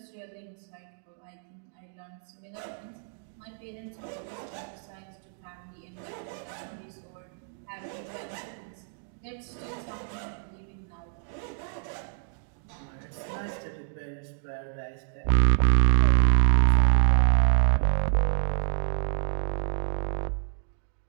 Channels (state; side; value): silent; left; digital silence